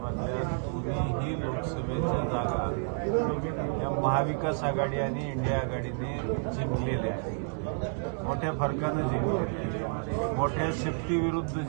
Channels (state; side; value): silent; left; 58 dB below the other